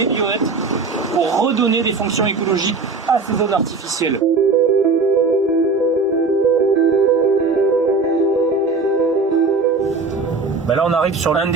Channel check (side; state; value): left; quieter; 4.0 dB